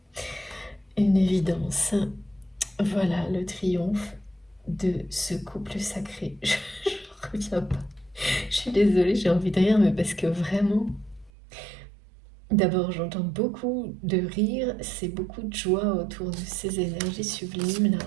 une évidence. Voilà le triomphe de ce couple sacré. Je reviens pas. Je suis désolée, j'ai envie de rire, mais parce que vraiment, d'abord, j'entends beaucoup de rire, c'est beaucoup de joie autour de ces énergies sublimes là.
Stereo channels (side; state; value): left; drops out; at 11.3 s